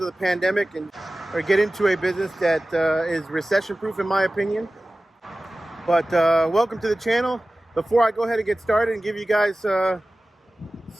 of the pandemic, and or get into a business that is recession-proof, in my opinion. But welcome to the channel. Before I go ahead and get started and give you guys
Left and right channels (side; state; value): both; normal; correlation 0.97